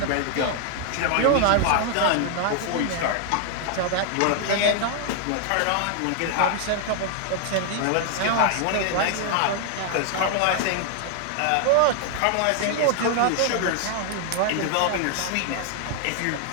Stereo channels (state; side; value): different; both; correlation 0.00